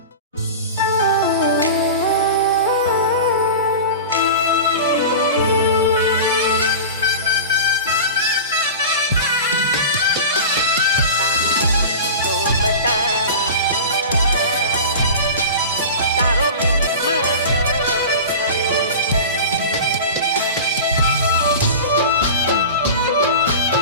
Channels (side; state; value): both; inverted; correlation -0.31